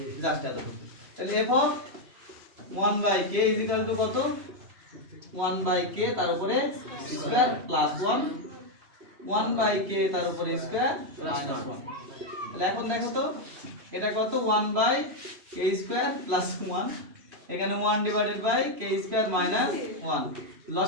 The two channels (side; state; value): left; late; 3.0 ms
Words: জাস্ট এত। তাহলে f of 1/k is equal to কত 1/k তার উপরে স্কয়ার প্লাস 1 1/k তার উপরে স্কয়ার মাইনাস 1। তাহলে এখন দেখো তো এটা কত 1/k স্কয়ার প্লাস 1, এখানে 1 divided by k square minus 1।